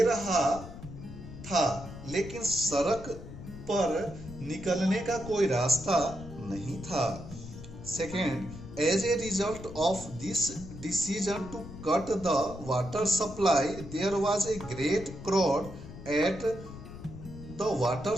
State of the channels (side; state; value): left; noise; rumble, 13 dB below the sound